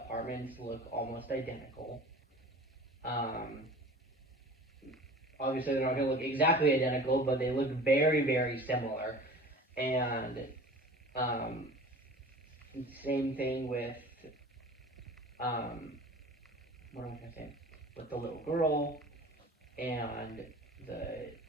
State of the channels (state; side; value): normal; both; correlation 0.41